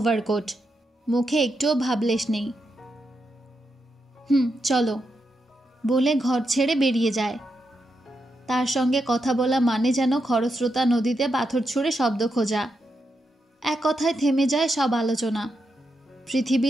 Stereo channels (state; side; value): normal; both; correlation 0.85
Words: মুখে একটুও ভাবলেশ নেই। চলো বলে ঘর ছেড়ে বেরিয়ে যায়। তার সঙ্গে কথা বলা মানে যেন খরস্রোতা নদীতে পাথর ছুঁড়ে শব্দ খোঁজা। এক কথায় থেমে যায় সব আলোচনা।